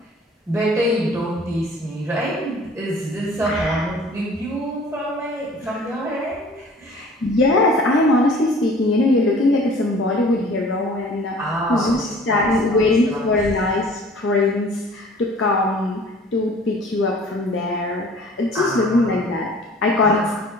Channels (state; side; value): normal; both; correlation 0.49